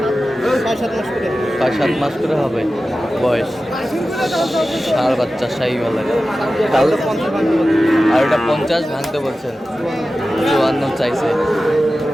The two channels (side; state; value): both; normal; correlation 0.94